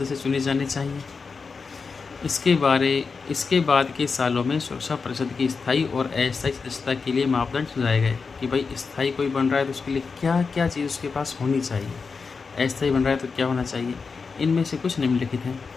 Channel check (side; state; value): right; quieter; 4.9 dB